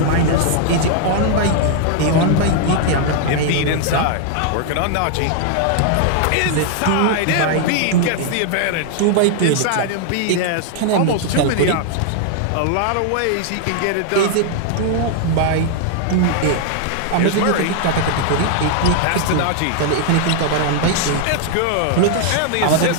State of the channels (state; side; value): different; both; correlation 0.00